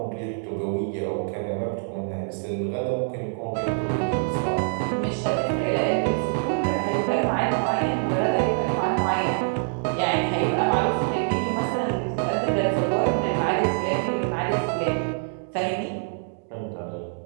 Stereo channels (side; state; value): left; silent; digital silence